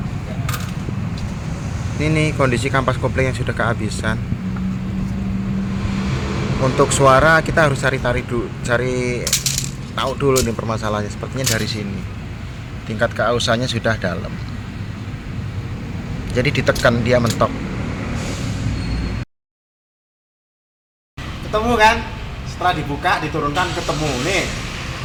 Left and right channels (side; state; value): both; identical; correlation 1.00